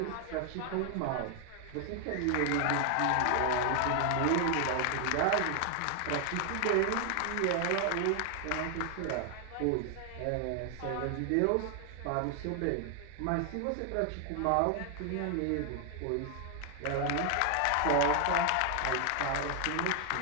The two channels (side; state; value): both; different; correlation 0.00